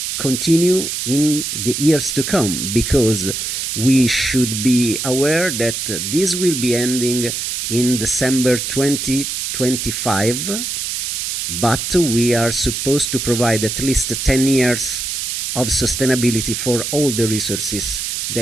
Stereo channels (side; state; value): right; noise; hiss, 3 dB below the sound